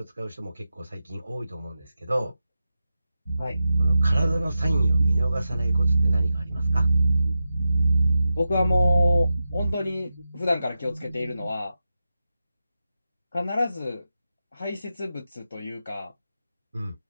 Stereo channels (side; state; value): both; inverted; correlation -0.90